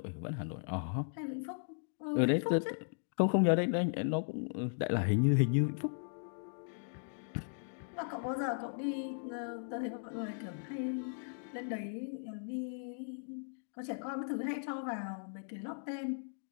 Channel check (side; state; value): right; silent; digital silence